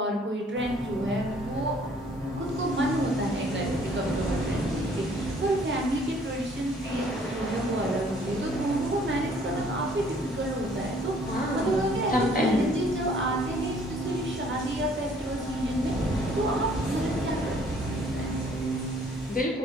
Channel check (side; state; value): both; normal; correlation 0.59